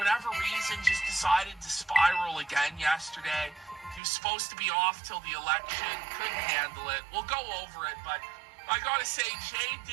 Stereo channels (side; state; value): left; drops out; at 4.0 s